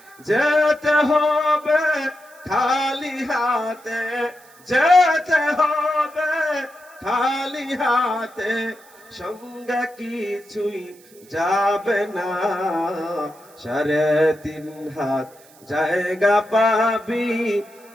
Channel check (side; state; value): right; noise; hiss, 26 dB below the sound